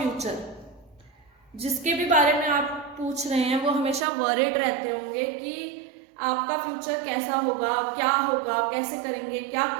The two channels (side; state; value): left; drops out; at 4.0 s